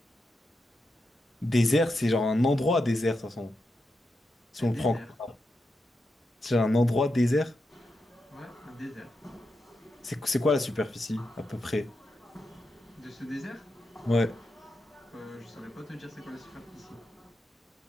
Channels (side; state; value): both; normal; correlation 0.87